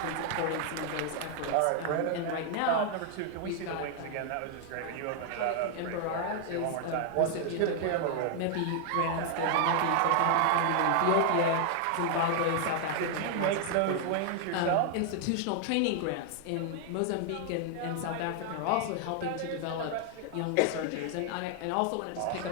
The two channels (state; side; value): different; both; correlation 0.00